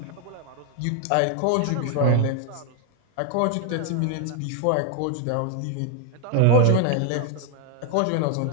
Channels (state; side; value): different; both; correlation 0.00